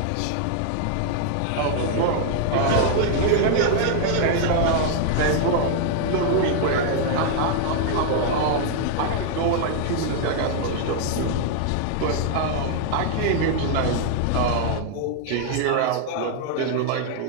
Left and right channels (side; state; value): both; different; correlation 0.00